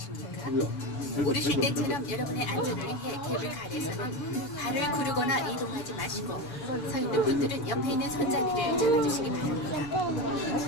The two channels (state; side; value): late; right; 7.0 ms